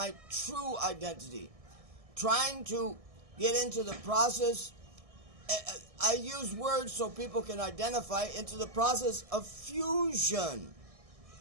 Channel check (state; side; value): late; left; 1.6 ms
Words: true identity, trying to get into the process. I use words so people can identify into the process of fusion.